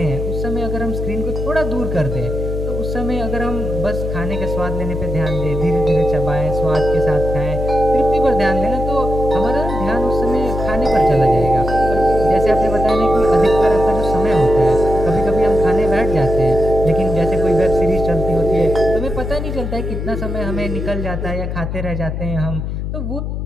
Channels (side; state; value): left; noise; hum, 4 dB below the sound